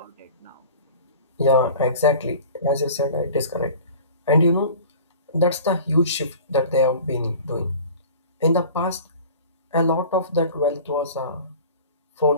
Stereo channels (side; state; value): both; inverted; correlation -0.41